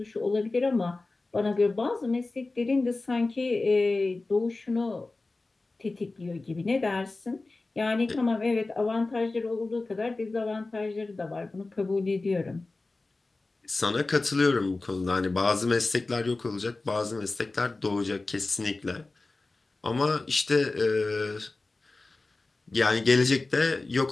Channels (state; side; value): quieter; right; 3.3 dB